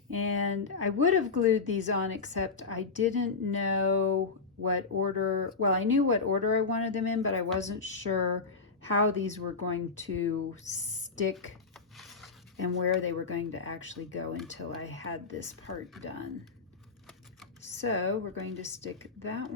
And I would have glued these on, except I didn't know what order, well, I knew what order I wanted them in, but I wasn't sure how these were going to stick and where they were going to actually go until I had this part done. So we're going to stick that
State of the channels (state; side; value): quieter; right; 4.5 dB